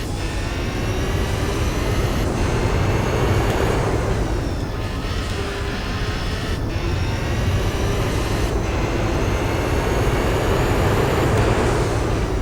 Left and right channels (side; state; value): both; identical; correlation 1.00